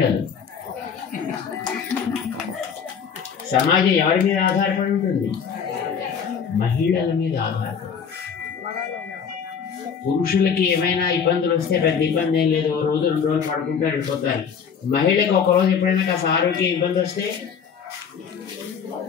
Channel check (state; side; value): quieter; right; 6.9 dB